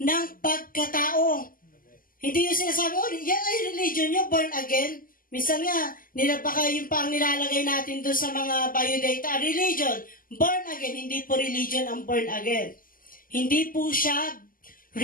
ng pagkatao. Hindi yung sinasabi, yan ay religion nyo, born again. Minsan nga, baka yung pang nilalagay natin doon sa mga biodata, religion, born again, hindi po religion ang born again. Hindi po siya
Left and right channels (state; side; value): late; right; 0.41 ms